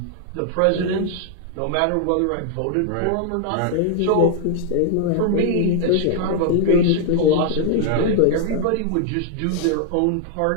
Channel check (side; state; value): both; different; correlation 0.00